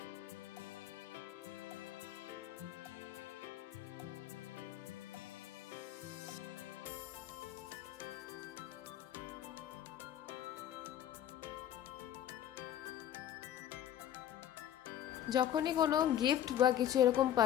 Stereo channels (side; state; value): right; quieter; 11.0 dB